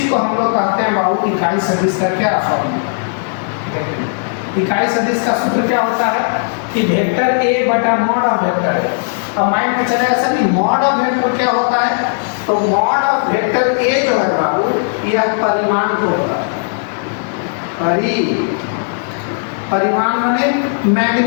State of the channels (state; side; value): silent; right; digital silence